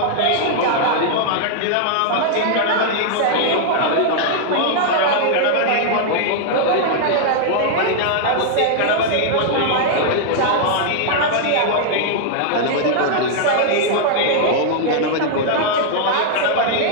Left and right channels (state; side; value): different; both; correlation -0.01